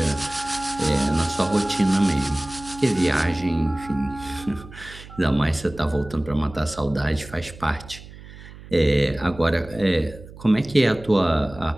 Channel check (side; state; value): right; noise; hum, 17 dB below the sound